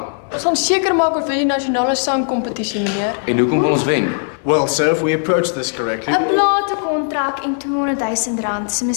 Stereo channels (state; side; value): silent; right; digital silence